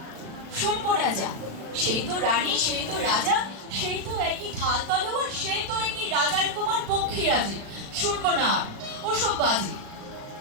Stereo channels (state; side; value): late; left; 36 ms